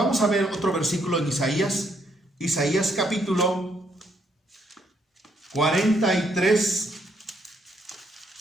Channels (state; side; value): normal; both; correlation 0.73